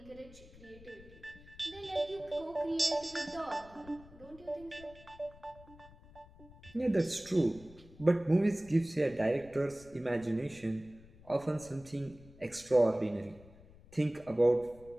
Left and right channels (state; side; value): noise; left; rumble, 21 dB below the sound